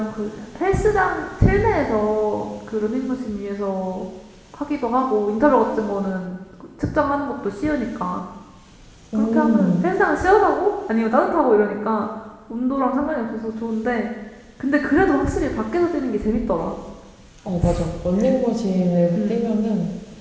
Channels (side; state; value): both; identical; correlation 1.00